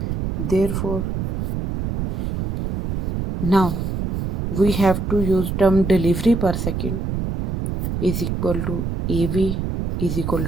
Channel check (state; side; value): noise; right; rumble, 3 dB below the sound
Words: Therefore, now we have to use term delivery per second is equal to AV is equal